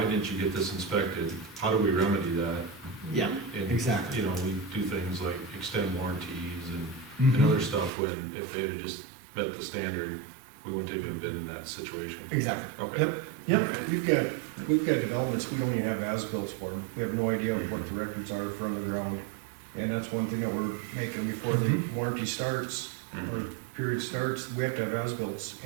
didn't you get this inspected? How do we remedy that? Yeah, And, exactly. we do things like extend warranties and Mhm. other stuff when, if they had just met the standard, we wouldn't have even been in that situation. Exactly. Okay. Yep, yep. We've got developments, we don't even have as-bills for them. We have no idea what the records are from the ground. And that's one thing that we're making before the warranty starts, or Mhm. period starts, we have to have as-bills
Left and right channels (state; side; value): drops out; left; at 7.9 s